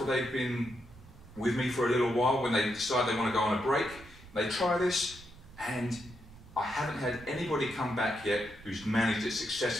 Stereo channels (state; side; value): noise; right; rumble, 20 dB below the sound